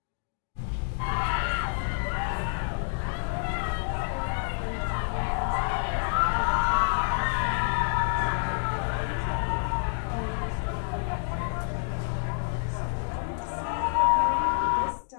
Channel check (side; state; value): right; silent; 57 dB below the other